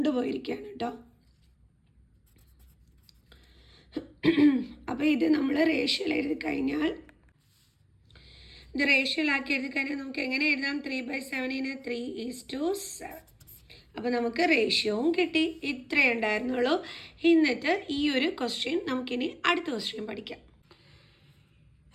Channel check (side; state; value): both; identical; correlation 1.00